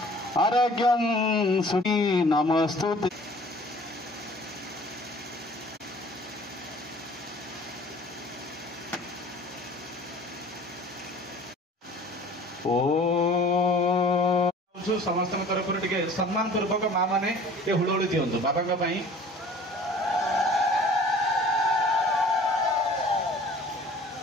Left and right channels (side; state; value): both; normal; correlation 0.49